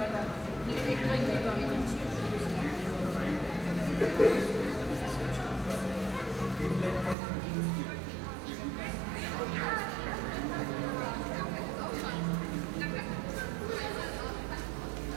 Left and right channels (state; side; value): drops out; left; at 7.2 s